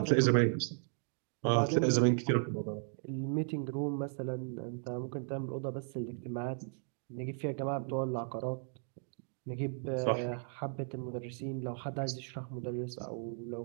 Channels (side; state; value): left; silent; 54 dB below the other